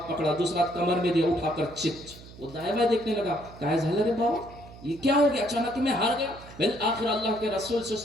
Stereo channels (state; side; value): noise; right; hum, 18 dB below the sound